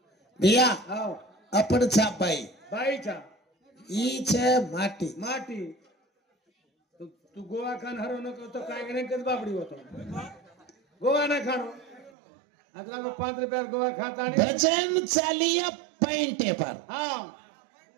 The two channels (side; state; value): left; drops out; at 12.1 s